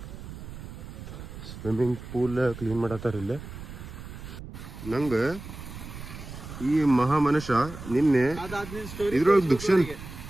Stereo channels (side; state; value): right; noise; rumble, 12 dB below the sound